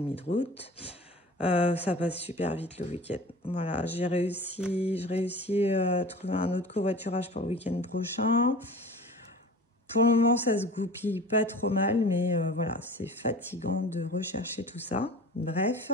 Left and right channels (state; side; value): normal; both; correlation 0.39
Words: de route. Ça passe super vite le week-end. Voilà, je réussis à trouver un autre covoiturage pour le week-end prochain. Pour le moment, ça se goupille pas trop mal, mais voilà, c'est fatigant de rechercher tout ça. Bref,